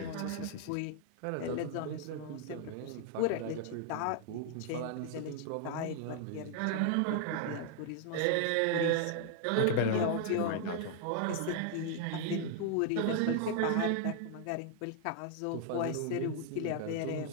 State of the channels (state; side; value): different; both; correlation 0.00